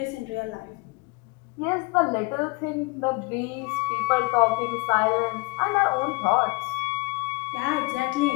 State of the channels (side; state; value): right; quieter; 27.1 dB